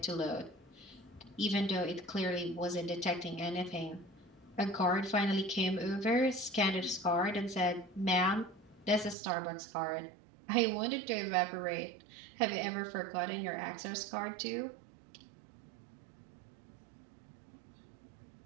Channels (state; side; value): drops out; left; at 9.2 s